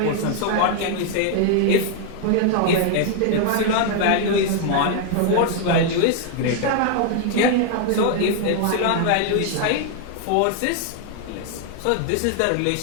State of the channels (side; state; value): both; different; correlation 0.00